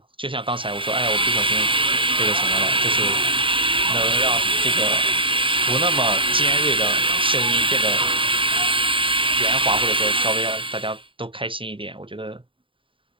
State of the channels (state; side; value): late; left; 0.25 ms